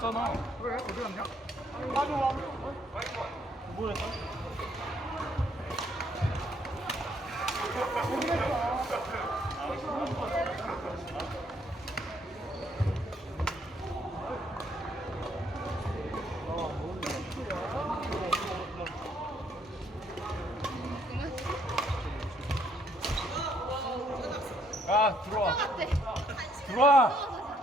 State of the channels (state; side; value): normal; both; correlation 0.69